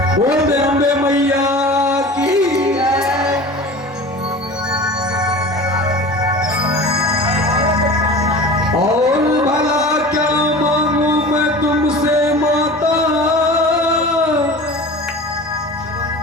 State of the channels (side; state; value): both; normal; correlation 0.37